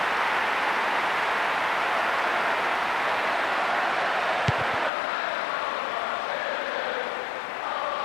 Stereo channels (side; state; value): right; drops out; at 4.9 s